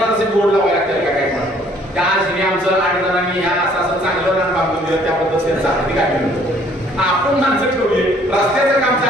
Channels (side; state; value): both; normal; correlation 0.60